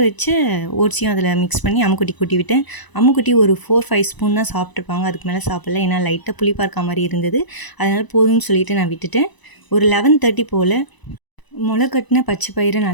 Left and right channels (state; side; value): late; right; 1.0 ms